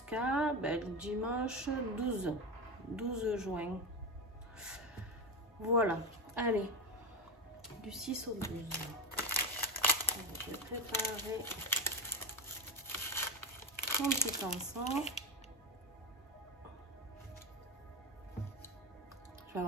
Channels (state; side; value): normal; both; correlation 0.16